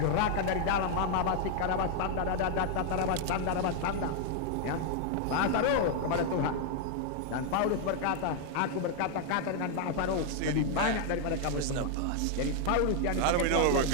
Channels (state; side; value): different; both; correlation 0.00